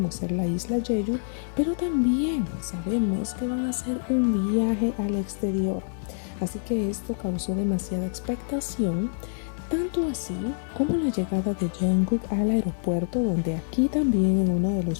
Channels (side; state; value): right; silent; 61 dB below the other